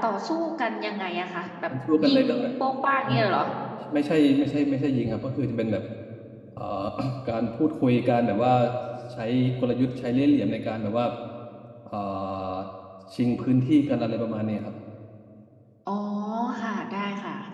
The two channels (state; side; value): identical; both; correlation 1.00